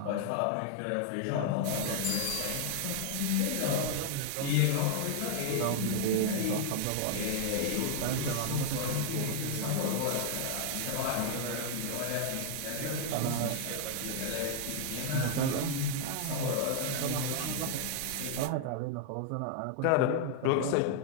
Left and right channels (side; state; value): both; different; correlation 0.00